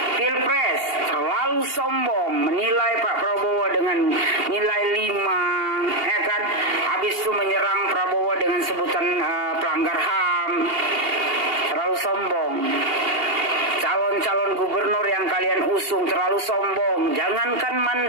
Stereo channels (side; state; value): left; late; 2.8 ms